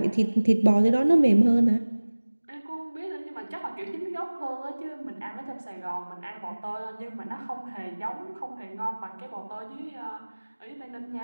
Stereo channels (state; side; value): inverted; both; correlation -1.00